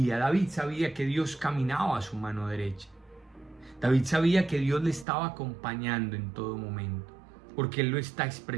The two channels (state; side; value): drops out; left; at 5.1 s